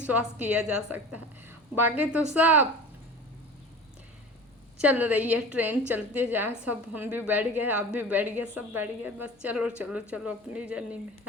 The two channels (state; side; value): normal; both; correlation 0.37